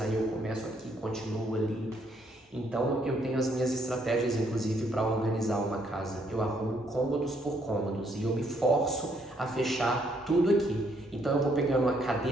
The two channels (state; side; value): normal; both; correlation 0.70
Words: eu começo aqui, continuo ali. Então eu tenho as minhas estratégias, inclusive, para organizar uma casa. Eu arrumo cômodos por cômodos e eu me forço a fechar tudo aqui. Então eu vou pegando uma